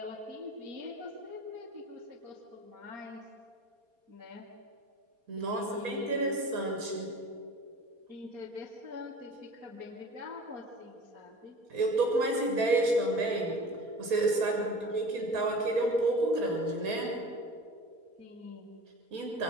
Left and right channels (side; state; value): left; late; 4.3 ms